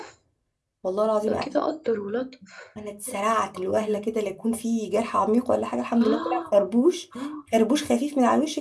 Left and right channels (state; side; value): identical; both; correlation 1.00